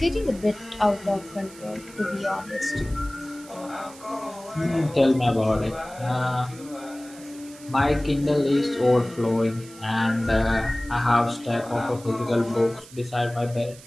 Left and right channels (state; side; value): noise; right; hiss, 20 dB below the sound